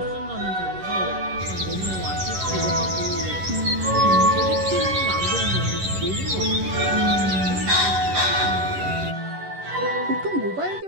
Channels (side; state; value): left; late; 11 ms